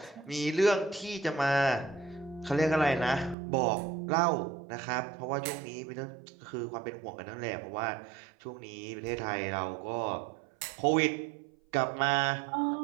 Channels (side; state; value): left; drops out; at 3.4 s